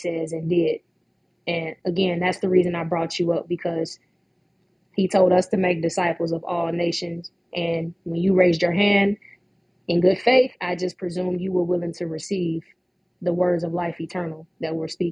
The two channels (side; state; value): both; identical; correlation 1.00